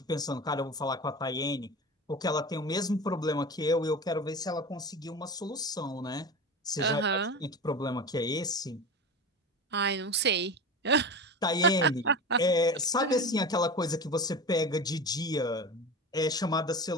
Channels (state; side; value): normal; both; correlation 0.29